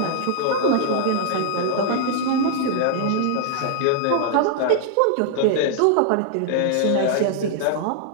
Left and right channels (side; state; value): both; different; correlation -0.01